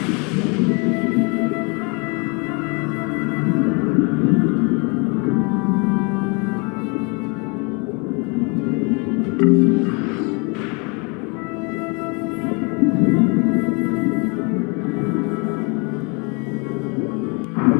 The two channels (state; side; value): quieter; right; 31.7 dB